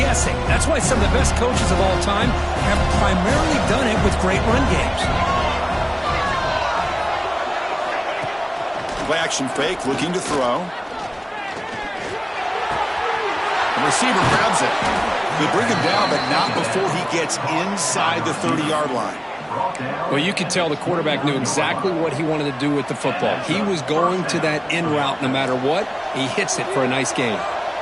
That's why some of the best coaches of all time have primarily done it with great run games. Play action fake, looking to throw. The receiver grabs it. They bring him down, but not before he gets inside the 30-yard line. Well, you could tell the quarterback knew exactly what he wanted to do with the football. He was going to that in route no matter what. He hits it for a nice gain.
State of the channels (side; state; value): both; identical; correlation 1.00